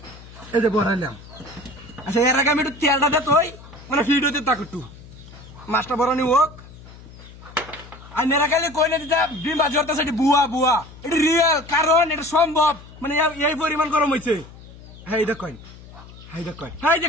যে ভরাইলাম। আচ্ছা এর আগে আমি একটু তেলটা দে তুই মানে হিট হতে থাক একটু মাছটা ভরানি হোক। আর মেরা খাইলে কই না দিতা ডিম বাজি হতেছে এটি বুয়া এটি রিয়েল কারণ এটা সম্ভব মানে এই পরিমাণ গরম হয়েছে। হাই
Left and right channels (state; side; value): noise; left; hum, 19 dB below the sound